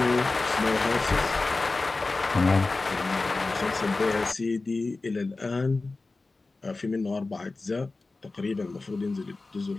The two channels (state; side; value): quieter; right; 3.5 dB